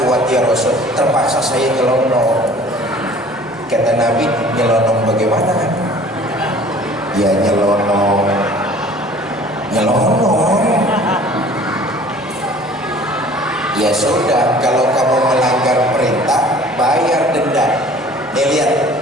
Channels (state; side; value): normal; both; correlation 0.49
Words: kuat ya Rasul, terpaksa saya nyelonong. Kata Nabi, nyelonong bagaimana? Ya nyelonong. Ya sudah, kalau kamu melanggar perintah, bayar denda. Nih